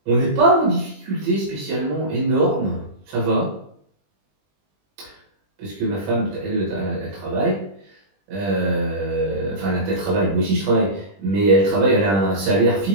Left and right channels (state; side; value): late; left; 20 ms